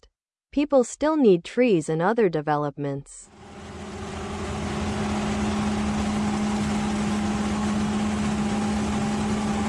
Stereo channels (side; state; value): both; identical; correlation 1.00